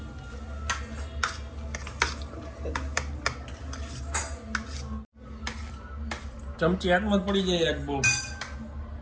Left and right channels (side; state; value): both; identical; correlation 1.00